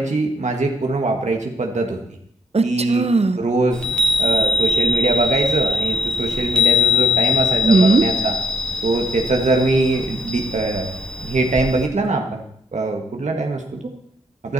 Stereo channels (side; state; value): both; normal; correlation 0.71